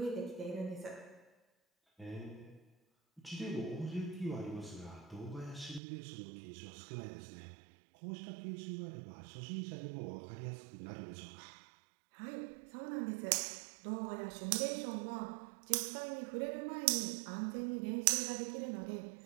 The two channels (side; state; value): left; drops out; at 5.8 s